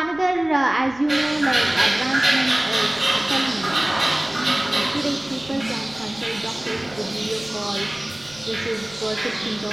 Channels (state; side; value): noise; right; rumble, 23 dB below the sound